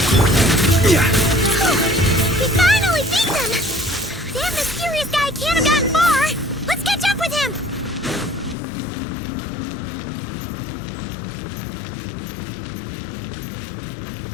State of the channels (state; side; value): drops out; right; at 8.6 s